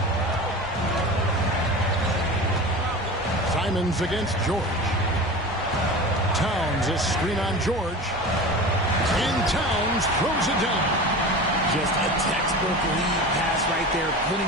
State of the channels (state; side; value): normal; both; correlation 0.32